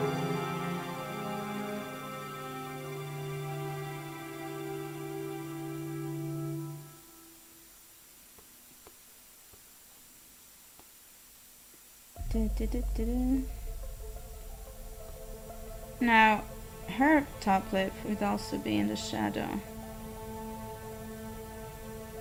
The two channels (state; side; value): identical; both; correlation 1.00